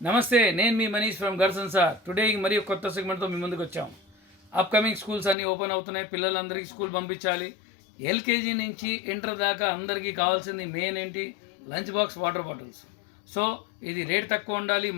నమస్తే, నేను మీ Manish from గర్సన్ sir. Today మరియు కొత్త సెగ్మెంట్తో మీ ముందుకు వచ్చాం. అప్కమింగ్ స్కూల్స్ అన్నీ ఓపెన్ అవుతున్నాయి. పిల్లలందరికీ స్కూల్ పంపించాలి. ఎల్కేజీ నుంచి ఇంటర్ దాకా అందరికీ కావాల్సింది మెయిన్ ఏంటి? Lunch box, water bottles. So ఇది రేట్ తక్కువ ఉండాలి,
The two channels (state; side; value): drops out; right; at 5.4 s